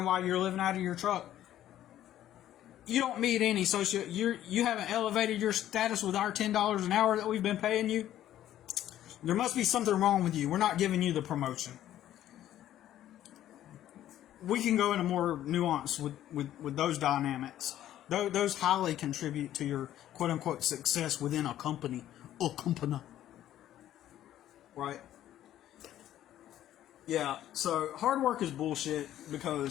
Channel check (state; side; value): quieter; right; 12.3 dB